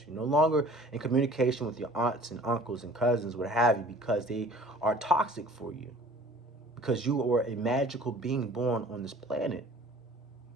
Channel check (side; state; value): both; normal; correlation 0.48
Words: You're no longer in communication with your aunts and uncles and cousins, what have you, because they are toxic for you. Because you are a magical being born on this planet.